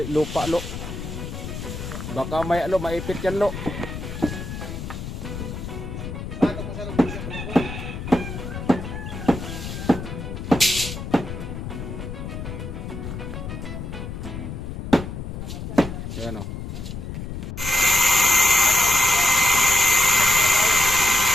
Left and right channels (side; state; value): left; noise; rumble, 8 dB below the sound